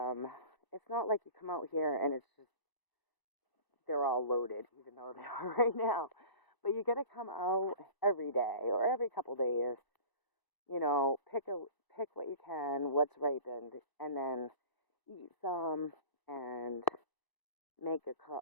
it's not like you come out here and it's just, they're all loaded, even though they are right now. But you got to come out every day or every couple days, you know, pick what you can, what's ripened, and then eat some and make a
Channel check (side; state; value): right; late; 1.0 ms